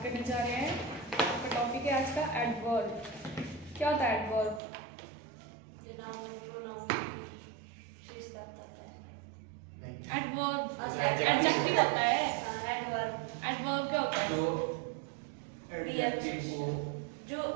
करने जा रहे हैं। आपका टॉपिक है आज का एडवर्ब। क्या होता है एडवर्ब? एडवर्ब एडजेक्टिव होता है। एडवर्ब क्या होता है? जो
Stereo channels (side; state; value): left; drops out; at 4.6 s